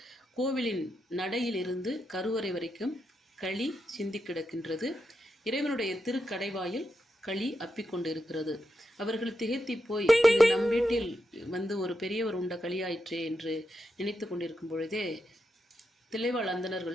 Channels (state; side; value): normal; both; correlation 0.85